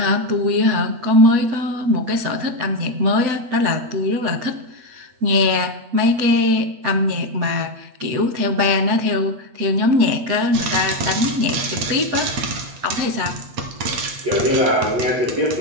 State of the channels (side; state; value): left; late; 8.3 ms